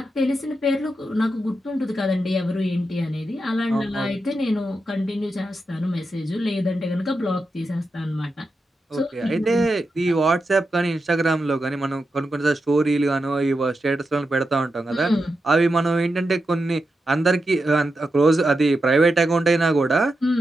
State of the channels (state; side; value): normal; both; correlation 0.88